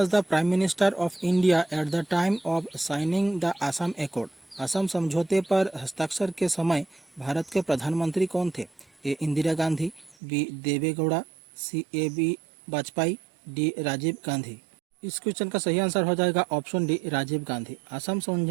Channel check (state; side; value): drops out; left; at 10.2 s